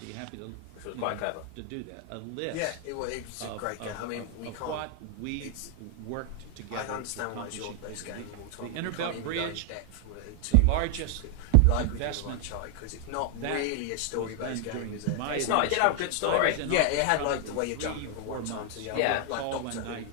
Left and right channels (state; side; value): different; both; correlation 0.00